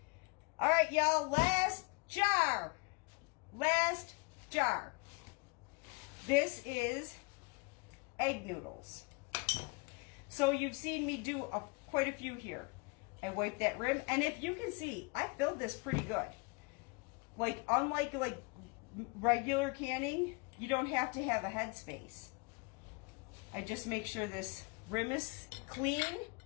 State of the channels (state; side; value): quieter; right; 29.7 dB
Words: All right, y'all. Last jar. Last jar. This is egg noodles. So you've seen me do quite a few here. I wipe that rim, and if you can see, I filled this pretty good. Like, unlike regular canning, you don't have to have a headspace. I just make sure this rim is clean.